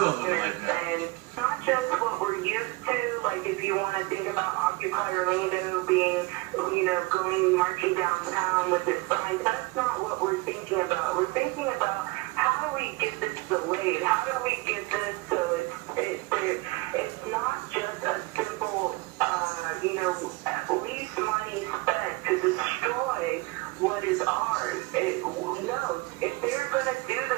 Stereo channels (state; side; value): quieter; left; 23.2 dB